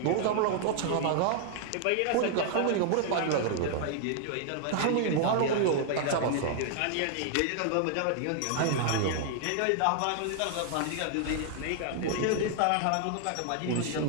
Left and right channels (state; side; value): different; both; correlation 0.00